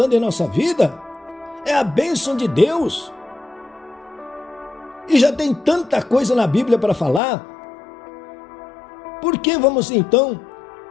em nossa vida. É a bênção de Deus. E já tem tanta coisa na Bíblia para falar. Por que vamos então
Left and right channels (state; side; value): drops out; right; at 7.2 s